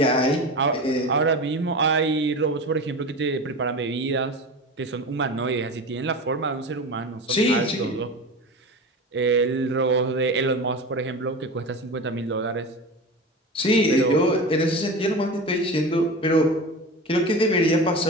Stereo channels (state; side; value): normal; both; correlation 0.29